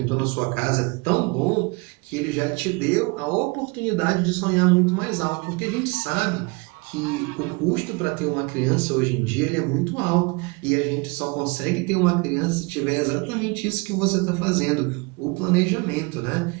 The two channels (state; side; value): quieter; left; 28.1 dB